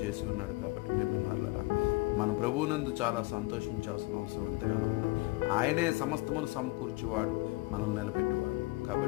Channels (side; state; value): right; quieter; 22.1 dB